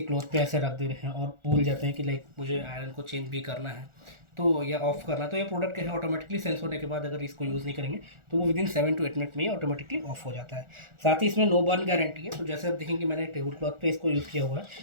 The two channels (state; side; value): late; left; 1.4 ms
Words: क्लॉथ पे ऐसे रख दे रहे हैं और भूल जाते हैं कि लाइक मुझे आयरन को चेंज भी करना है तो या ऑफ करना है, तो ये प्रोडक्ट क्या है ऑटोमेटिकली सेंस होने के बाद अगर इसको यूज़ नहीं करेंगे तो वो विदिन 7 to 8 मिनट में ही ऑटोमेटिकली ऑफ हो जाता है। साथ ही इसमें नो बर्न गारंटी है, तो जैसे आप देखेंगे मैंने टेबल क्लॉथ पे इसको यूज़ किया हुआ है,